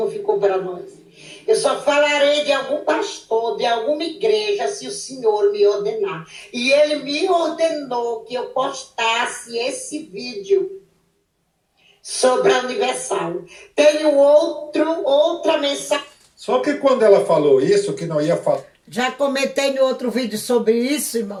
ficou para nós. Eu só falarei de algum pastor, de alguma igreja, se o Senhor me ordenar. E ele me ordenou que eu postasse esse vídeo sobre a Universal. Tenho outra mensagem. Só que quando ela falou isso, que não ia falar. Já comentei no outro vídeo sobre isso,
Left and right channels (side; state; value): both; identical; correlation 1.00